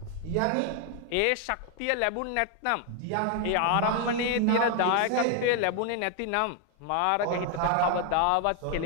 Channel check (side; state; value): both; different; correlation 0.01